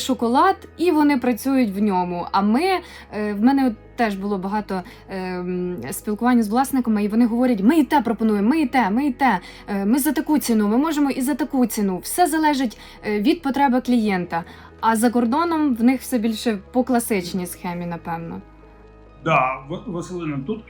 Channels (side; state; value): both; identical; correlation 1.00